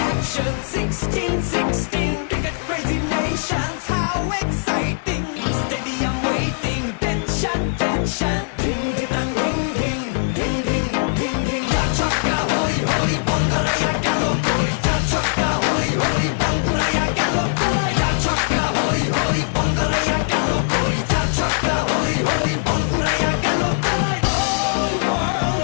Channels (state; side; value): silent; right; digital silence